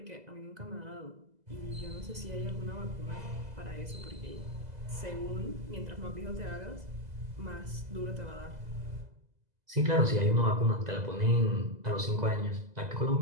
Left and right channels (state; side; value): late; left; 2.0 ms